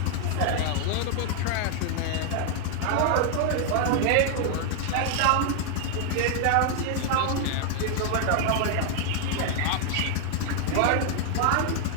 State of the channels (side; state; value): both; different; correlation 0.00